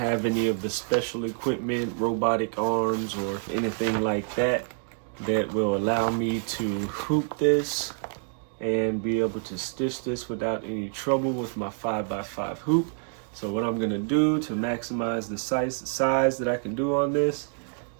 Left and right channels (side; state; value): left; silent; 60 dB below the other